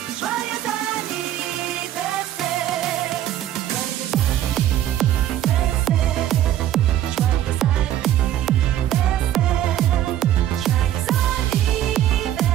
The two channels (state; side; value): quieter; left; 12.1 dB